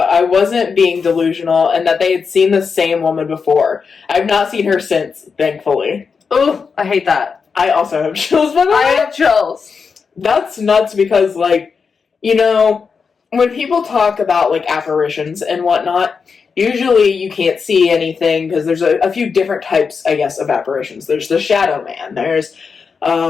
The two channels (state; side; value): quieter; right; 5.5 dB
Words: I wasn't being delusional, and that they had seen the same woman before. I've not seen her since, thankfully. Oh, I hate that. I also have chills, by the way. I have chills. That's nuts because, like, when people talk about, like, apparitions and whatnot, usually you can't see anything because there's a few different types, I guess, of apparitions. There's the shadow man. There's